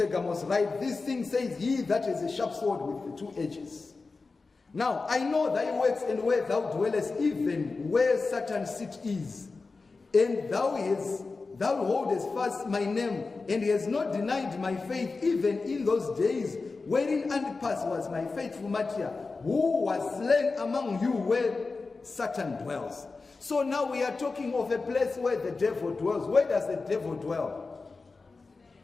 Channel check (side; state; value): right; quieter; 4.0 dB